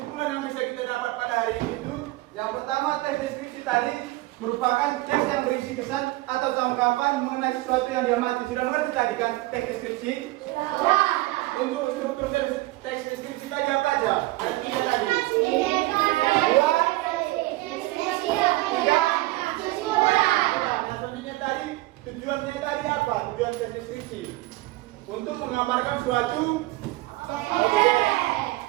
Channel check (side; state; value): left; quieter; 19.5 dB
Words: yang bisa kita dapat pada hari ini itu yang pertama, teks deskripsi tadi merupakan teks yang berisi kesan atau tanggapan mengenai sesuatu yang diamati. Sudah mengerti tadi kan teks deskripsi? Untuk struktur teks deskripsi tadi apa aja? Ada 3 tadi. 2, 3. Selanjutnya tadi tujuannya tadi apa? Tujuan teks deskripsi untuk menggambarkan suatu objek. Oke.